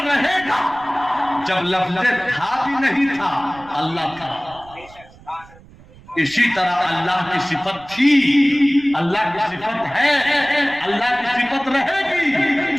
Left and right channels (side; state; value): right; noise; rumble, 23 dB below the sound